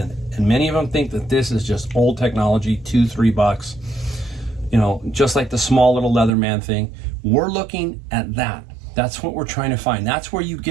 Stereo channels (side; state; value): left; drops out; at 6.3 s